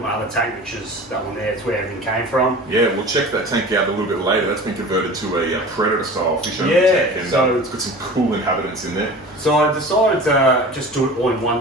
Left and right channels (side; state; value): both; normal; correlation 0.38